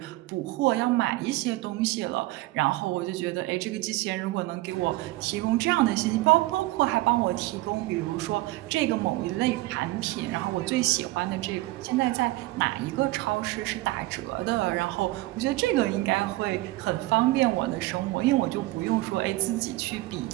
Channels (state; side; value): quieter; left; 19.3 dB